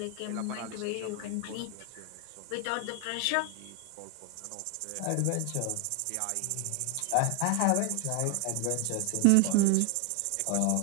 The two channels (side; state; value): both; different; correlation 0.01